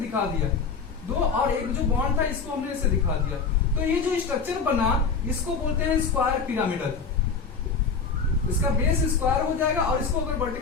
दिया दो, और एक जो बॉन्ड था इसको हमने ऐसे दिखा दिया। तो ये जो स्ट्रक्चर बना इसको बोलते हैं स्क्वायर पिरामिडल। इसका बेस स्क्वायर हो जाएगा और इसको अगर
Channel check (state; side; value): quieter; right; 5.2 dB